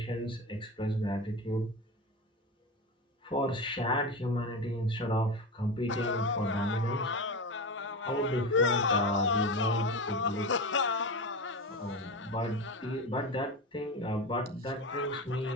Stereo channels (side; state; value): both; normal; correlation 0.23